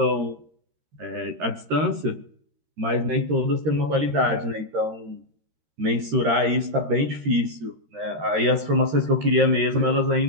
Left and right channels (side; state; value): left; late; 13 ms